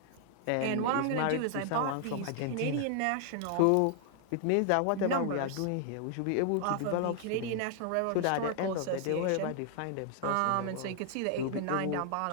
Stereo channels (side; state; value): both; different; correlation 0.00